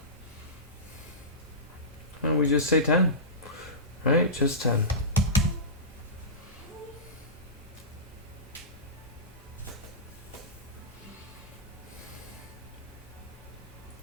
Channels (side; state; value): both; normal; correlation -0.19